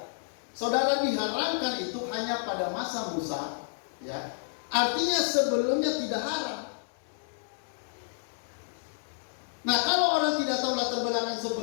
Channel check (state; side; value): silent; right; 58 dB below the other